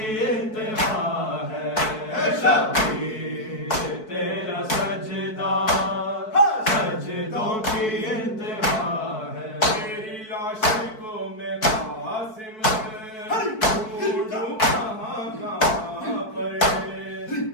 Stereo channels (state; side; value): late; right; 4.6 ms